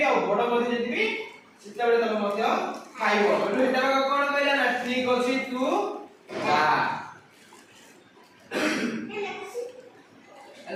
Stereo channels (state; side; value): identical; both; correlation 1.00